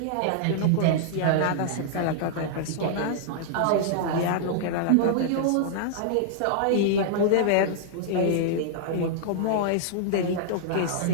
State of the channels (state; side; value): different; both; correlation -0.01